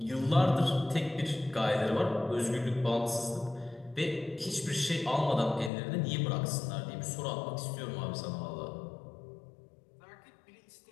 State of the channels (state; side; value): drops out; right; at 5.7 s